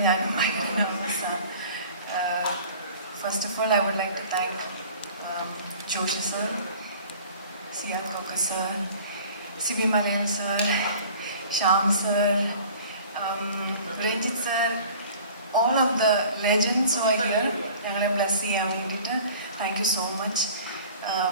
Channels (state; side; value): inverted; both; correlation -0.46